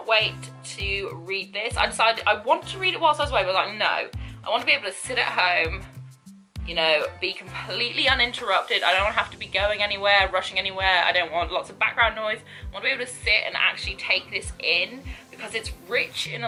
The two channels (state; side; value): identical; both; correlation 1.00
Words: wait to read this. I decided I wanted to read it whilst I was away, but I was like, no, I want to be able to sit at home, you know, be completely uninterrupted. I don't have to be going anywhere, rushing anywhere. I don't want lots of background noise. I want to be able to sit and actually take this in, because it's rich in